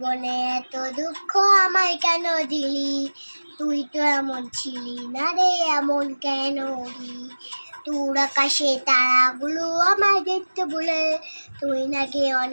এত দুঃখ আমায় কেন দিলি, তুই তো এমন ছিলি না রে, এমন কেন রি, তোর আকাশে তারাগুলো আমায় দেখতে বলে, তুই নাকি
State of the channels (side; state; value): both; inverted; correlation -1.00